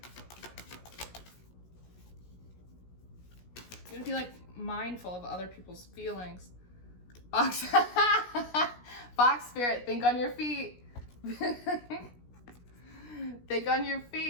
You have to be like mindful of other people's feelings. Fox, Fox Spirit, think on your feet. Think on your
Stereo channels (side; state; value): right; late; 17 ms